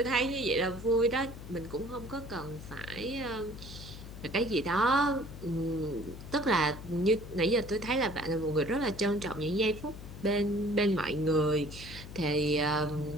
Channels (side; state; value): left; noise; hum, 12 dB below the sound